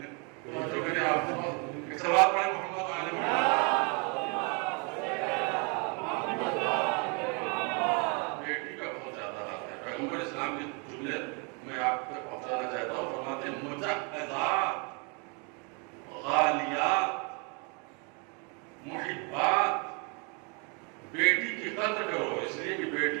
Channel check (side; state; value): left; quieter; 34.3 dB